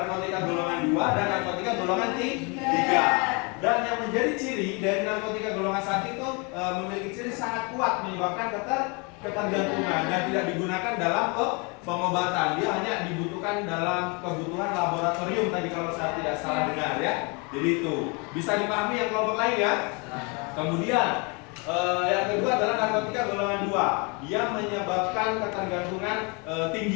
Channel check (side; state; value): right; quieter; 31.4 dB